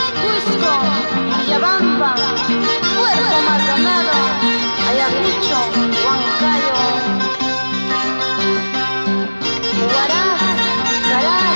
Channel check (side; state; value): both; inverted; correlation -1.00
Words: Cusco, Villabamba, Puerto Maldonado, Ayacucho, Huancayo, Huaraz,